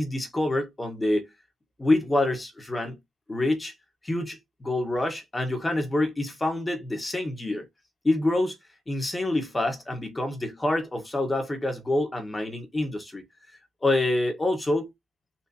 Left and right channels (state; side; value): normal; both; correlation 0.91